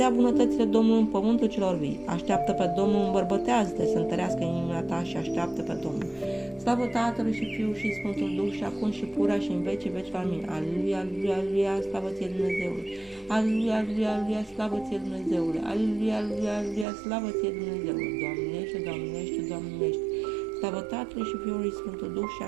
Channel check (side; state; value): left; drops out; at 16.9 s